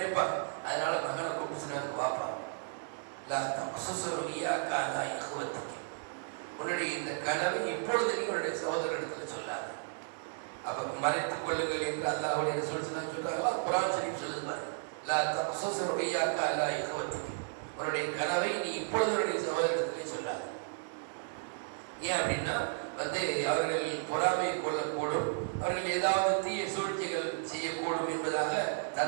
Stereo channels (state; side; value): silent; left; digital silence